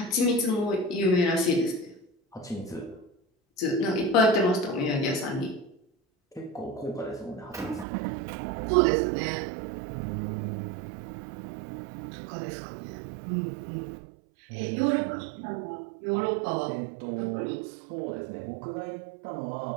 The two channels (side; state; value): left; drops out; at 7.9 s